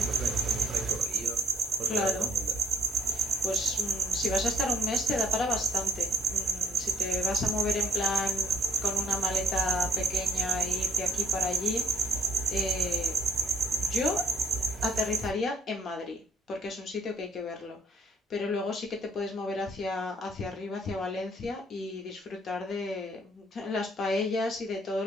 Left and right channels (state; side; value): normal; both; correlation 0.63